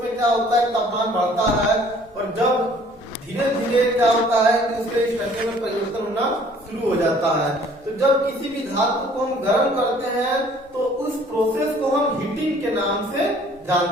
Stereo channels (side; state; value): both; normal; correlation 0.56